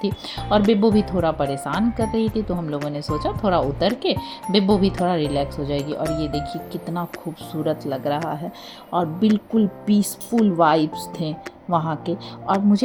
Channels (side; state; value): both; identical; correlation 1.00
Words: और बिब्बो भी थोड़ा परेशान कर रही थी। तो हम लोगों ने सोचा थोड़ा उतर के बिब्बो भी थोड़ा रिलैक्स हो जाएगी। और ये देखिए कितना खूबसूरत लग रहा है और बिल्कुल पीसफुल वाइब्स थे वहाँ के। और